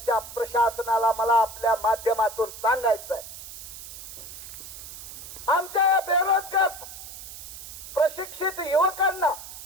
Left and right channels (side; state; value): right; noise; hiss, 12 dB below the sound